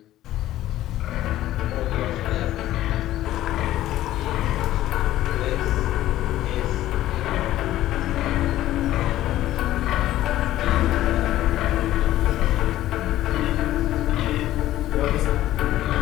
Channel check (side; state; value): right; quieter; 14.2 dB